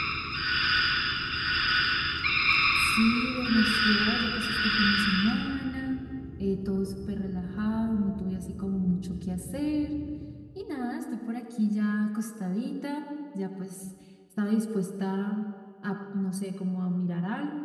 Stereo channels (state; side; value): identical; both; correlation 1.00